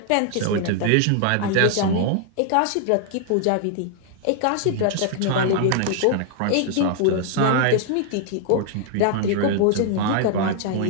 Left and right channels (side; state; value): both; different; correlation 0.00